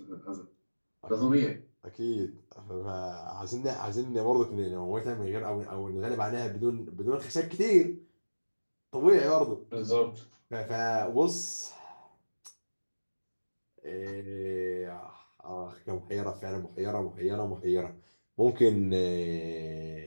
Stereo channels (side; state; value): both; inverted; correlation -1.00